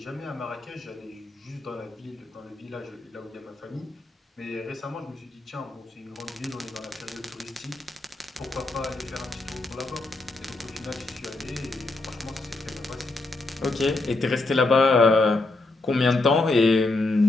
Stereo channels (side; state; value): right; quieter; 3.1 dB